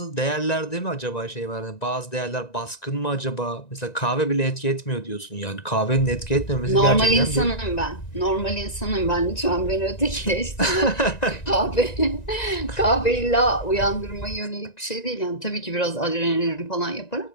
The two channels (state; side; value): late; right; 1.9 ms